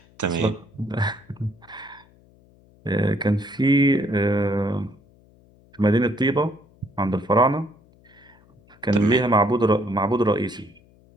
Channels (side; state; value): left; noise; hum, 29 dB below the sound